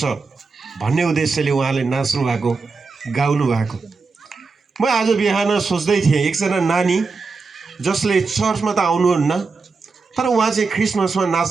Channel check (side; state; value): left; quieter; 4.4 dB